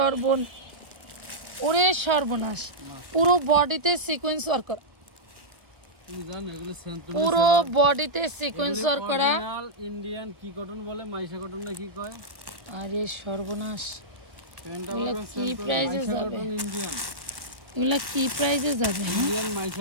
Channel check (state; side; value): late; left; 1.2 ms